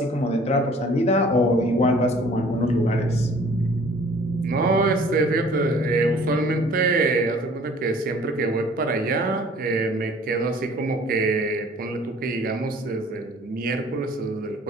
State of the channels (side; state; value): both; normal; correlation 0.52